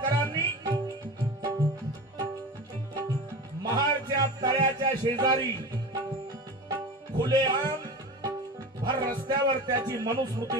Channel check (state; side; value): normal; both; correlation 0.30